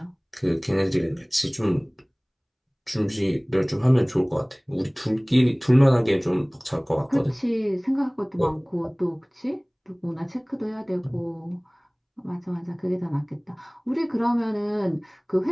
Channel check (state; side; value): identical; both; correlation 1.00